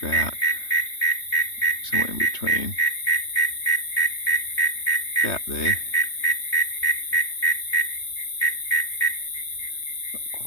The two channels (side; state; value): right; late; 3.2 ms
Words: about somewhere in between, about there. Not